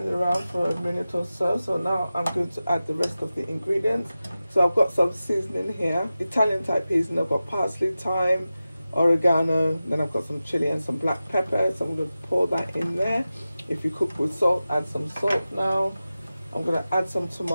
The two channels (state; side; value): inverted; both; correlation -0.94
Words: around for a minute or so. So now I'm going to add the rest of the ingredients. So I've got some seasoning here, Italian type seasoning. I've got parsley, thyme, oregano, then I've got some chili and some black pepper. So I'm going to pour that in there. If you cook with salt, add some salt now. I'm going to add some